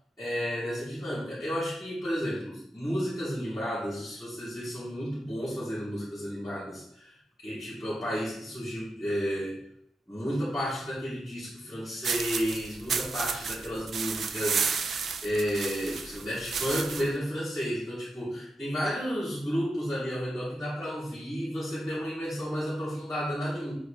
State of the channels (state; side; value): normal; both; correlation 0.87